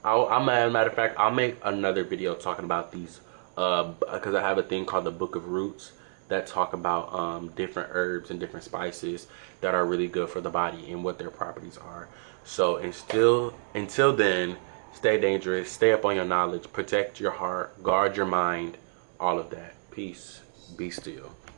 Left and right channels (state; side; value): silent; left; digital silence